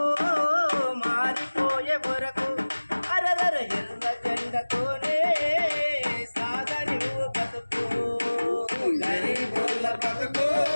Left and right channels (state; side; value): inverted; both; correlation -1.00